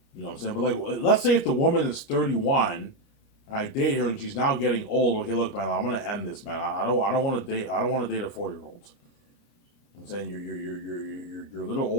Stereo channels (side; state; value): right; late; 29 ms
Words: You know what I'm saying? But like, let's say if the woman is 31, and I date her and she's now getting old. Okay, look, man, I'm gonna end this, man. I don't want to date. I don't want to date a 4-year-old. I'm saying you're a little